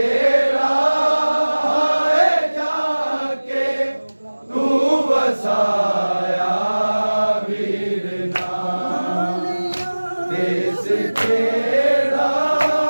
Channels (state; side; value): inverted; both; correlation -1.00